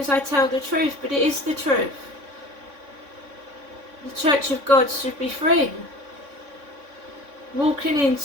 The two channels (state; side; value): late; left; 3.6 ms